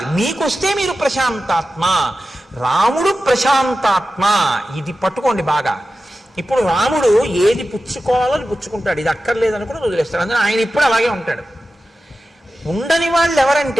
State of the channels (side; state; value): both; normal; correlation 0.93